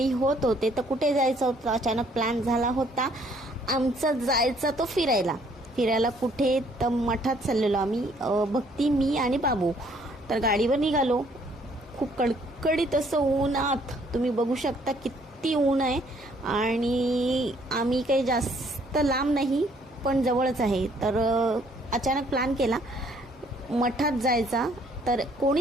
होत होते, तर कुठे जायचं होतं अचानक प्लॅन झाला होता आमचा जायचा तो फिरायला कुठे तर मठात चाललेलो आम्ही, भक्ती मी आणि बाबू। तर गाडीवर निघालो, खूप कडकडीत असं ऊनात तुम्ही बघू शकता किती ऊन आहे। आणि आम्ही काही जास्त लांब नाही पण जवळच आहे। तर अचानक प्लॅन केला मठात जायचा, तर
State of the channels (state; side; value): normal; both; correlation 0.64